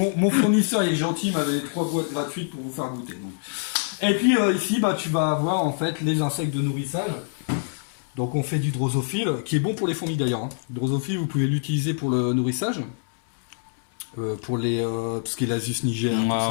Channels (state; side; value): silent; right; 62 dB below the other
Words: mon fournisseur, il est gentil, il m'avait 3 boîtes gratuites pour vous faire goûter. Donc. Et puis, ici, tu vas avoir, en fait, les insectes de nourrissage. Donc on fait du drosophile, qui est bon pour les fourmis d'ailleurs. Le drosophile, vous pouvez l'utiliser pour le nourrissage, pour les tout ce qui est l'Asus niger,